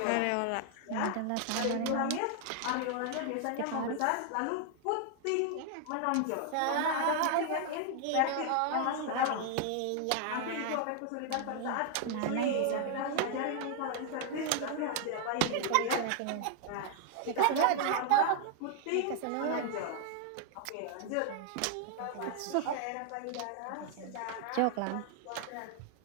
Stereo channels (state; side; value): different; both; correlation 0.00